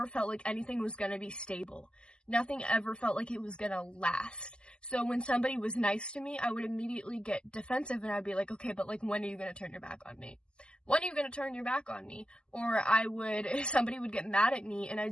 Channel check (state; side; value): late; right; 0.050 ms